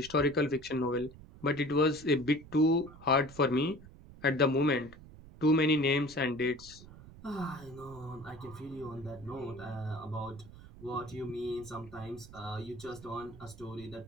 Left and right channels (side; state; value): right; noise; rumble, 18 dB below the sound